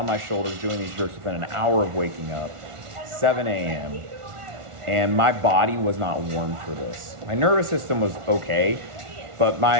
my shoulders doing these jerks within an hour of waking up, 7 a.m., and my body was not warm for this. My nervous system was okay, but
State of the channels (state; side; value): late; left; 1.4 ms